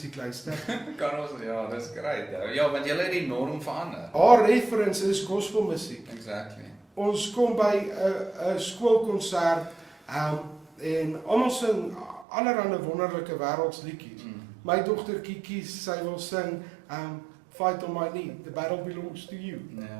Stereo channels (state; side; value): drops out; left; at 12.2 s